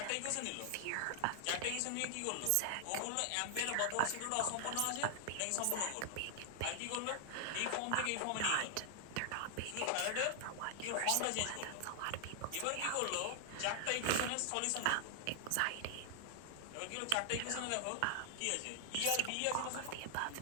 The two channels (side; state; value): both; different; correlation 0.00